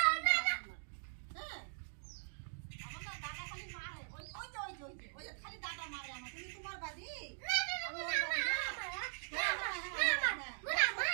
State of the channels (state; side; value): silent; left; digital silence